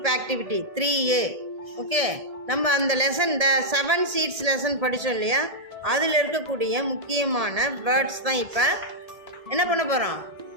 activity 3A. Okay, நம்ம அந்த lesson இந்த 7 seeds lesson படித்தோம் இல்லையா, அதில் இருக்கக்கூடிய முக்கியமான வேர்ட்ஸ் தான் இப்போ என்ன பண்ண போகிறோம்,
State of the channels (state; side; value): late; left; 1.8 ms